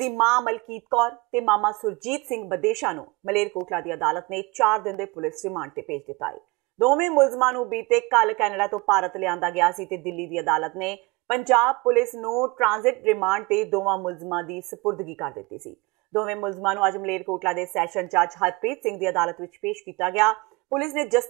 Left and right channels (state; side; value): quieter; left; 24.9 dB